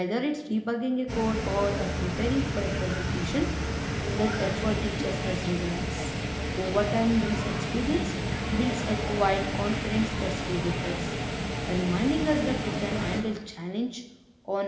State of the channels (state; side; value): identical; both; correlation 1.00